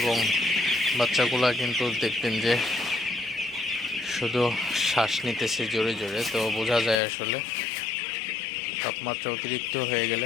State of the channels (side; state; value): right; drops out; at 7.0 s